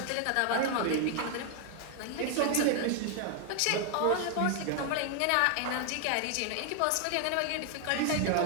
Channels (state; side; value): different; both; correlation 0.00